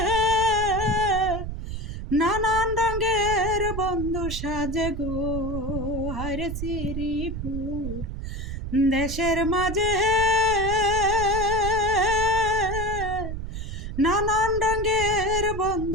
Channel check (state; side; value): noise; right; rumble, 6 dB below the sound